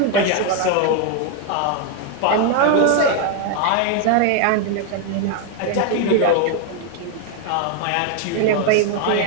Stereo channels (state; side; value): different; both; correlation 0.01